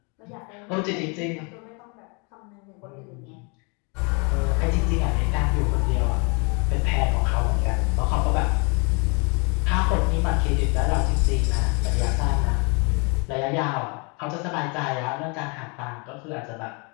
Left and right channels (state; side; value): quieter; right; 33.0 dB